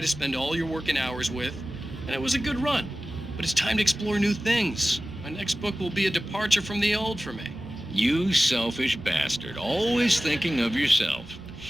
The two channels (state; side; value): normal; both; correlation 0.96